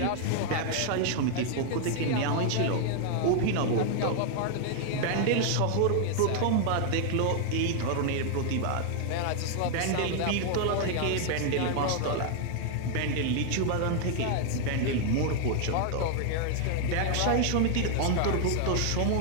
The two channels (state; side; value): different; both; correlation 0.00